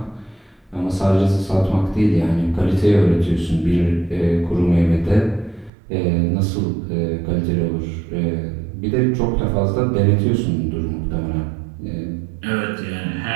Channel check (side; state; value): left; drops out; at 5.7 s